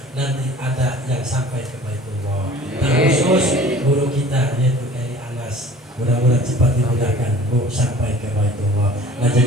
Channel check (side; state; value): both; normal; correlation 0.47